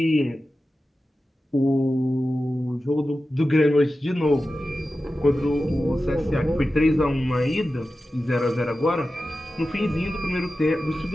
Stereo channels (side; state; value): both; normal; correlation 0.93